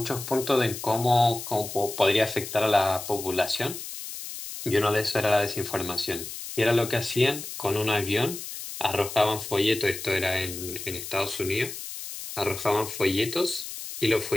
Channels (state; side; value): noise; left; hiss, 9 dB below the sound